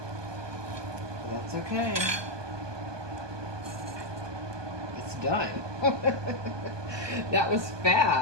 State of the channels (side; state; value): left; late; 1.2 ms